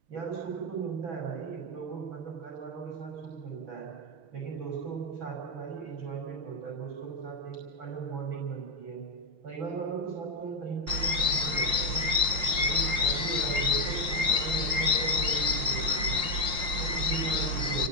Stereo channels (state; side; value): late; left; 5.7 ms